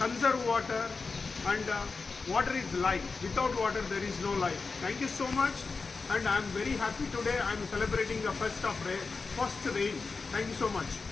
conserve water, and water is life. Without water there is no life. Thank you so much, and I am very happy today. I am celebrating the first rain. Thank you so much.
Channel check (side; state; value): right; quieter; 4.4 dB